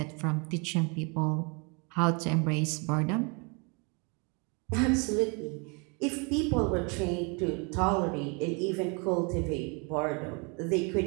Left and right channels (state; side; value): quieter; left; 32.5 dB